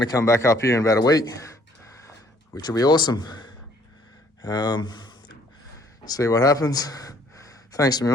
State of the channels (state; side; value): normal; both; correlation 0.61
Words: to come back up here in about a week, which will be awesome. See what happens. Thanks to